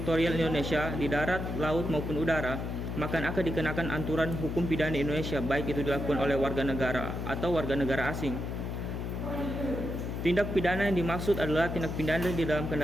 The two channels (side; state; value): left; noise; hum, 4 dB below the sound